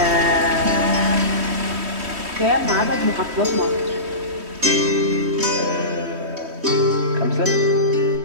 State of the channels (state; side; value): late; left; 3.1 ms